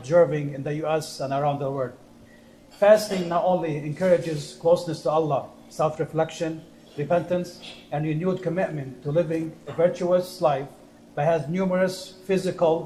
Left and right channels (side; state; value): both; identical; correlation 1.00